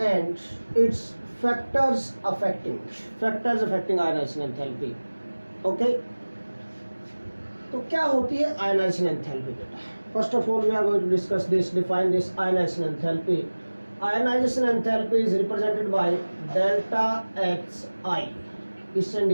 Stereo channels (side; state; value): both; inverted; correlation -1.00